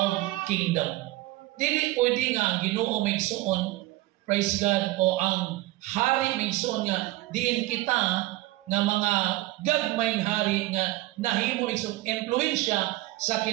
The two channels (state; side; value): quieter; left; 18.2 dB